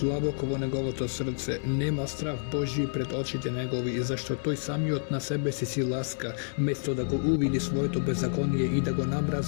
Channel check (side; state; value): right; silent; digital silence